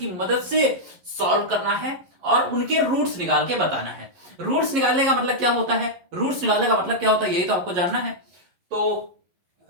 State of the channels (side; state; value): left; late; 11 ms